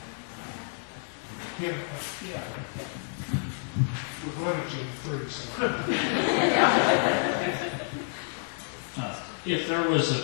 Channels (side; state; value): right; silent; 56 dB below the other